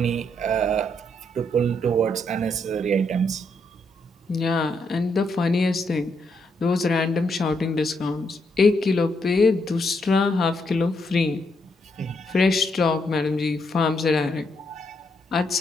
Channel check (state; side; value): normal; both; correlation 0.77